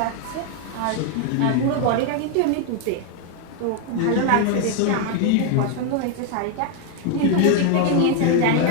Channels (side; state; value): both; different; correlation 0.00